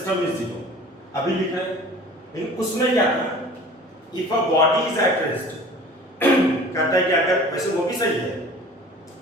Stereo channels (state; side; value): normal; both; correlation 0.44